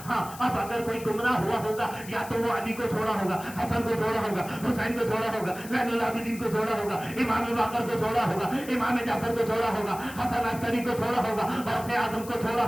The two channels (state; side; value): noise; left; hiss, 16 dB below the sound